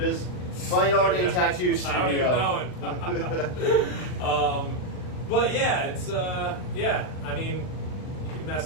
Fine Art and Tattoo Studio. I don't even know it. But yeah, it's I mean, you can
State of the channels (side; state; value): right; late; 39 ms